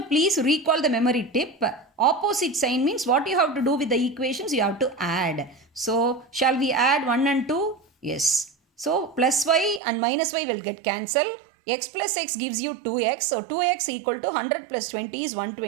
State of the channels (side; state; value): left; drops out; at 9.8 s